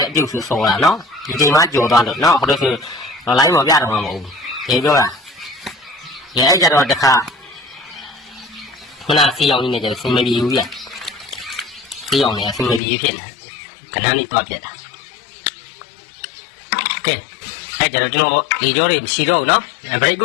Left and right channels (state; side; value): drops out; right; at 12.8 s